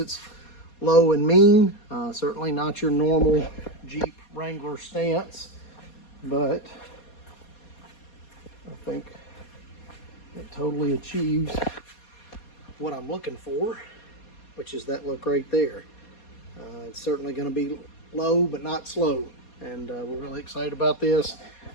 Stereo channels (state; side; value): late; right; 4.2 ms